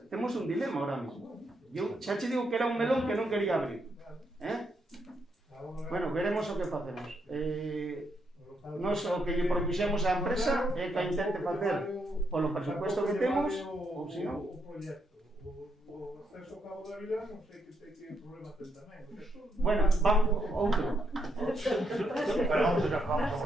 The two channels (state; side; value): normal; both; correlation 0.78